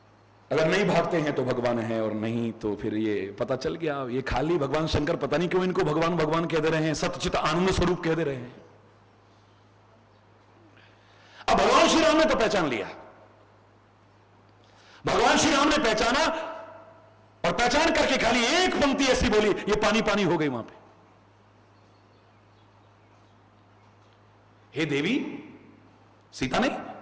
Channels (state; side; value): identical; both; correlation 1.00